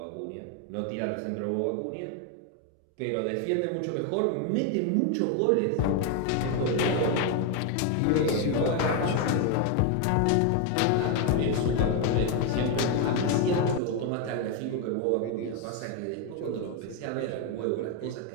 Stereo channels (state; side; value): different; both; correlation 0.01